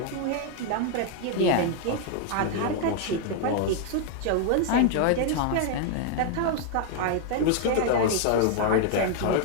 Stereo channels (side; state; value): both; different; correlation 0.00